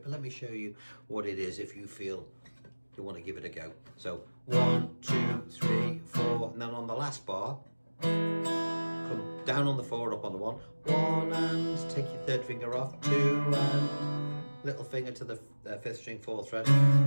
but let me show you what it is if you feel you want to give it a go. So 1, 2, 3, 4, and then on the last bar, come down on the 4, up on the 1, 1, and take your third finger off, 2, and little finger to the 5th string, 4th fret.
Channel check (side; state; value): both; inverted; correlation -1.00